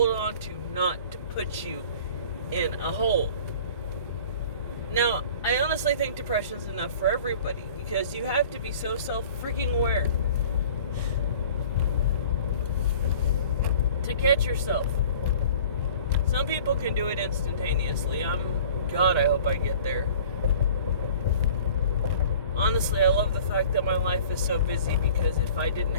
on to, not to put you in a hole. Now, I honestly think depression's enough for everybody, because you have to be so self-freaking aware to catch yourself. Some people can do it instantaneously. God, I hope I get there. Honestly, I love the fact that my life is so busy, because if I didn't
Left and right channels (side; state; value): both; inverted; correlation -0.46